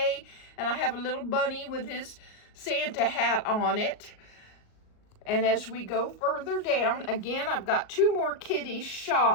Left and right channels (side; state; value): right; late; 38 ms